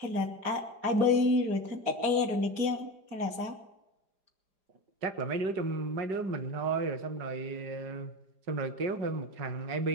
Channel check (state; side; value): late; left; 4.9 ms